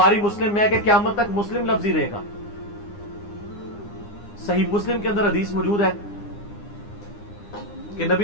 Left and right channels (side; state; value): right; late; 9.8 ms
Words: مسلم میں کہ قیامت تک مسلم لفظ ہی رہے گا. صحیح مسلم کے اندر حدیث موجود ہے کہ نبی